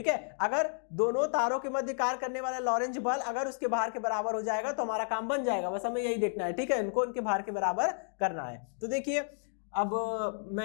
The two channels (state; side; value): silent; right; digital silence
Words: है। अगर दोनों तारों के मध्य कार्य करने वाला लॉरेंज बल अगर उसके भार के बराबर हो जाएगा तो हमारा काम बन जाएगा, बस हमें यही देखना है, ठीक है, इनको इनके भार के बराबर करना है। तो देखिए अब